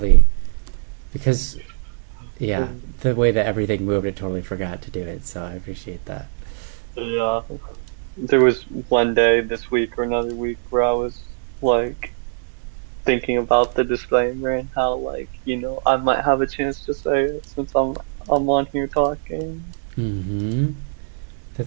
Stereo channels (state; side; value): silent; left; digital silence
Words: because yeah, the way that everything moved, I totally forgot to do it. So I appreciate that. Yeah, there was one day this week or another week where I was like thinking about the disclaimer and how, like, you know, I might have a chance to say it since I'm on here talking.